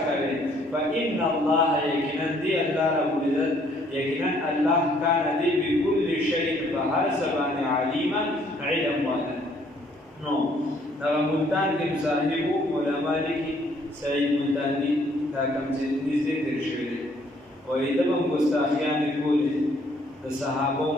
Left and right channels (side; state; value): both; normal; correlation 0.64